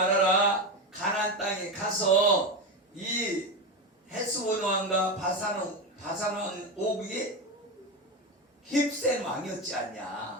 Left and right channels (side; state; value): both; normal; correlation 0.17